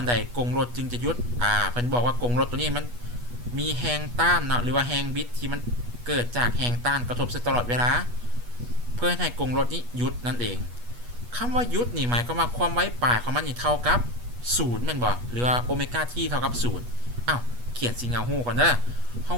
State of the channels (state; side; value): late; left; 8.3 ms